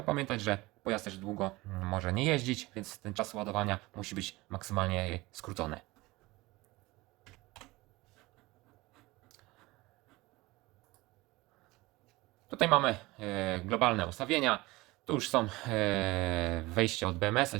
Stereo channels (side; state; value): left; quieter; 21.1 dB